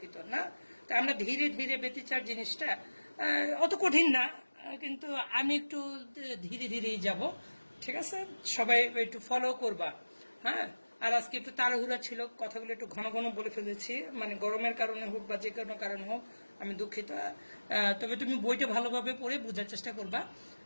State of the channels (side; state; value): both; inverted; correlation -1.00